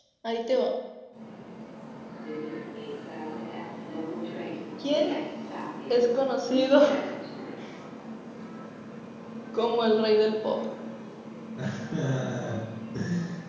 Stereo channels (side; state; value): both; identical; correlation 1.00